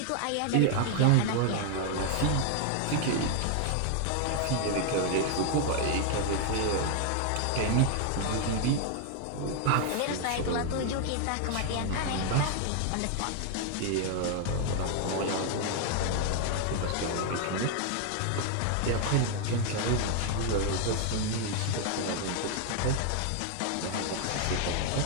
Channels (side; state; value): both; different; correlation 0.00